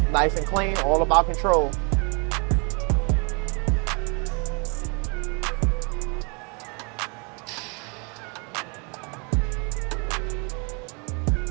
nice and clean, all about control.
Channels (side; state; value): left; quieter; 33.2 dB